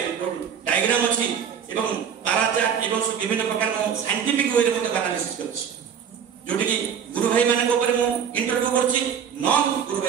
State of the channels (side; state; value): left; quieter; 7.8 dB